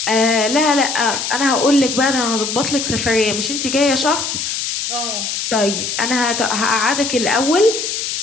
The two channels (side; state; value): left; noise; hiss, 3 dB below the sound